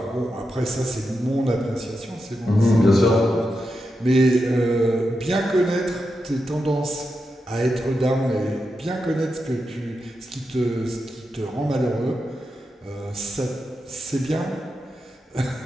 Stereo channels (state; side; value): normal; both; correlation 0.88